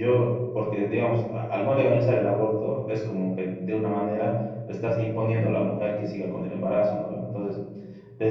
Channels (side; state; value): both; identical; correlation 1.00